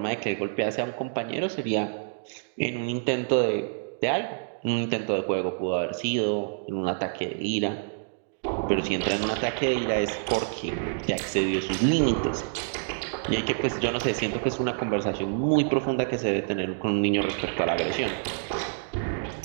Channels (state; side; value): silent; left; digital silence